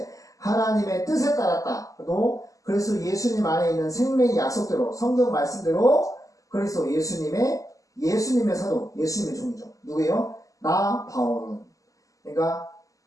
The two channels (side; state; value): right; late; 0.16 ms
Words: 하나님의 뜻에 따랐다. 또 그리스도 예수님 안에 있는 생명의 약속대로 성경 말씀대로 그리스도 예수님의 사도, 예수님의 종이죠. 누구예요? 나 바울은. 그러니까